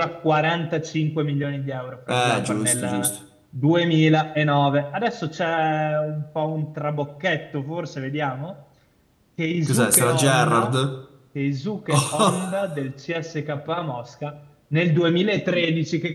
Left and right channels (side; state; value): both; identical; correlation 1.00